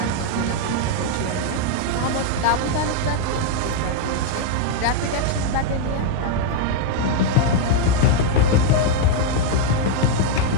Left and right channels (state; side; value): different; both; correlation 0.00